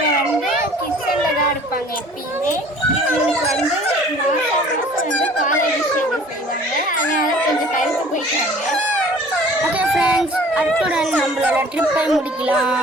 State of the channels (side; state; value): both; normal; correlation 0.50